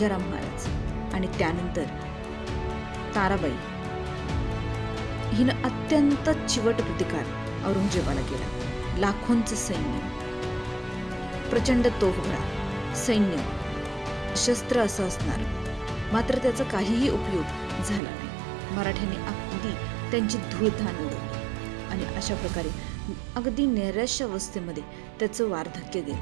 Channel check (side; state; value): left; drops out; at 18.0 s